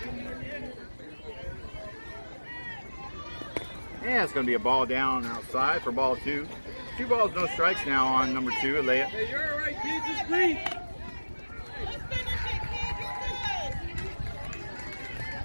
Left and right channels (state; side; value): inverted; both; correlation -1.00